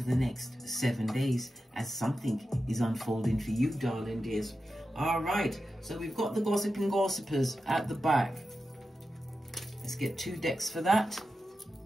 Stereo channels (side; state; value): both; normal; correlation 0.91